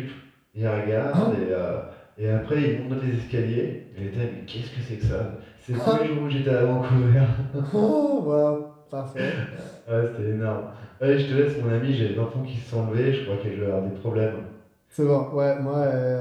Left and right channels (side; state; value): both; identical; correlation 1.00